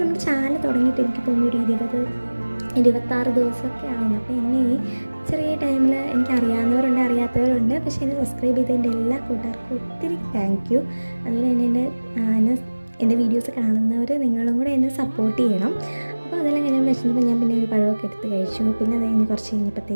നമ്മുടെ ചാനൽ തുടങ്ങിയിട്ട് എനിക്ക് തോന്നുന്നു ഒരു 26 ദിവസമൊക്കെ ആവുന്നു. അപ്പോൾ എന്നെ ഈ ചെറിയ ടൈമിൽ എനിക്ക് അറിയാവുന്നവരുണ്ട്, അറിയാത്തവരുണ്ട്. പക്ഷേ എന്നെ സബ്സ്ക്രൈബ് ചെയ്തതിൻ്റെ എല്ലാ കൂട്ടുകാർക്കും ഒത്തിരി താങ്ക് യു. അതുപോലെ തന്നെ എൻ്റെ വീഡിയോസ് കാണുന്നവർ നിങ്ങളും കൂടെ എന്നെ സപ്പോർട്ട് ചെയ്യണം. അപ്പോൾ അതെല്ലാം കഴിഞ്ഞ് വെച്ചിട്ടുമ്പോൾ ഞാൻ പിന്നെ ഒരു പഴമൊക്കെ എടുത്ത് കഴിച്ചു. പിന്നെ അത് കഴിഞ്ഞ് കുറച്ച്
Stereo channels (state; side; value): inverted; both; correlation -1.00